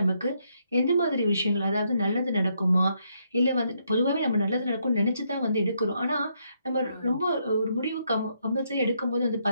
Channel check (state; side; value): inverted; both; correlation -0.76